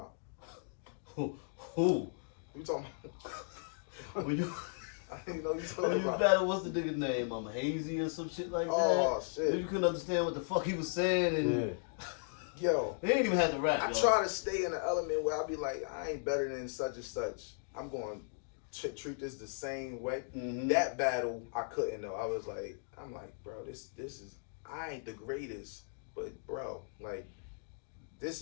Who? Who you talking about? When you I didn't know you when talking you about. battle, what's the nigga's name? Hazy or some shit like that. Oh shit. You couldn't understand what the fuck he was saying, and Yo, he ain't even had to rap. I y'all. try to stay in the element where I be like, I ain't better than such and such. I'm going to treat this the same way. That battle, I couldn't though. I'm like, bro, this is, I ain't the greatest, but bro, like, this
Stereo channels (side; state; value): right; silent; digital silence